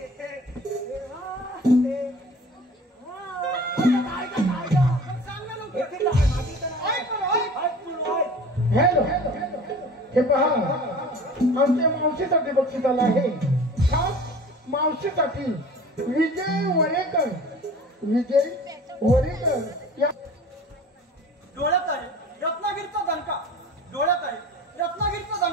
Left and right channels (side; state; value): both; normal; correlation 0.42